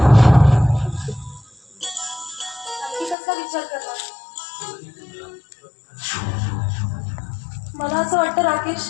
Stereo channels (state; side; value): drops out; right; at 3.2 s